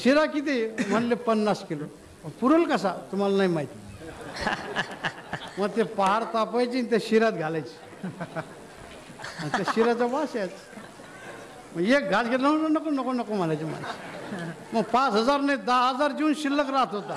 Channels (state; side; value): identical; both; correlation 1.00